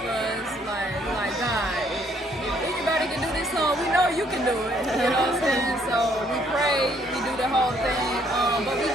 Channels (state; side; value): normal; both; correlation 0.66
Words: us. Like God, if anybody can do this song, we know you can do it. You know what I'm saying? So we pray, we do the whole thing, but we